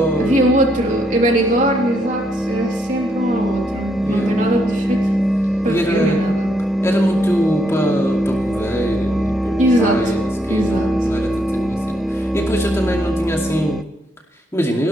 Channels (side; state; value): both; normal; correlation 0.75